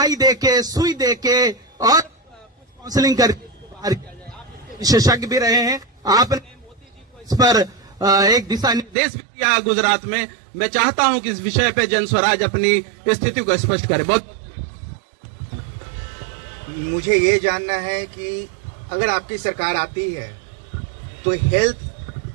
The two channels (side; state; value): left; drops out; at 9.0 s